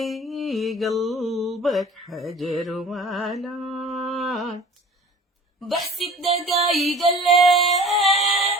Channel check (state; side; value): normal; both; correlation 0.44